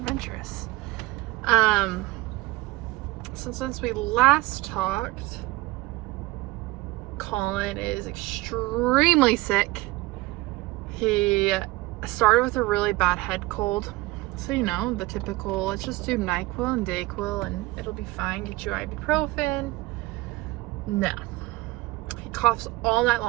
So since we last talked, Collin is extremely sick. He started with a really bad head cold. So, you know, the typical, let's just do NyQuil and DayQuil and it'll be fine. Get you ibuprofen. No. He coughs all night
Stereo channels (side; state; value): left; quieter; 20.4 dB